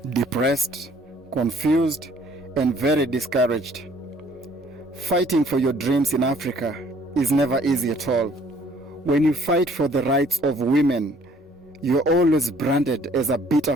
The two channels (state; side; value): normal; both; correlation 0.59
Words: depressed, confused, and very discouraged. Fighting for your dreams in Africa is never easy at all. When you fight for the rights of women, you're always branded as a